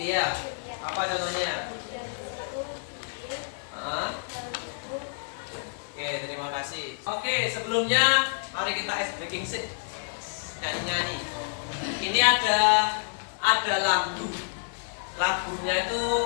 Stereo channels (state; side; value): silent; right; 59 dB below the other